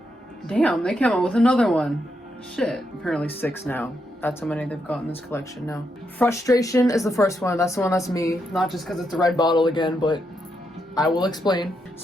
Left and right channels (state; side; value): normal; both; correlation 0.81